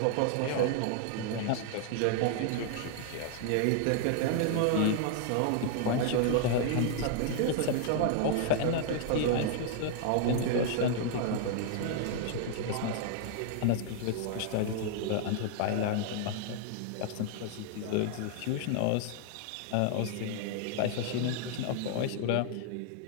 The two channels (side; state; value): both; different; correlation 0.00